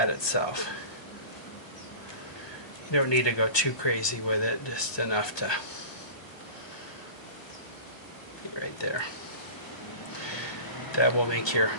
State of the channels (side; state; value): right; late; 1.2 ms